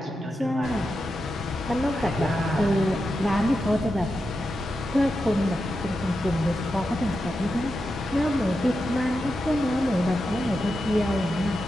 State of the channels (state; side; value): normal; both; correlation 0.88